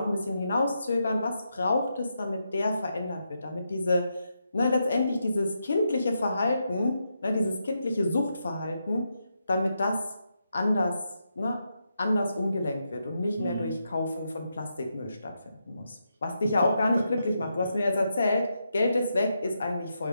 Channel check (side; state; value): both; inverted; correlation -0.84